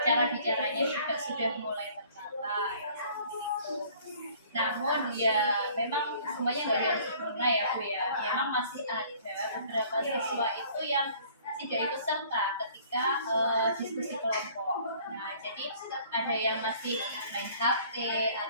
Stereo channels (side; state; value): both; inverted; correlation -0.54